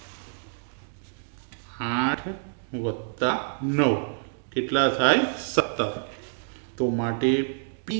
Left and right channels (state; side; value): silent; left; digital silence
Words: 8 વત્તા 9 કેટલા થાય 17. તો માટે P